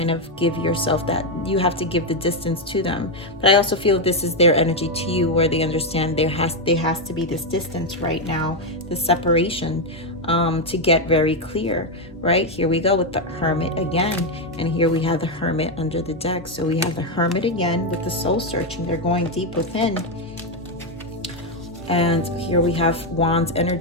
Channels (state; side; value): normal; both; correlation 0.04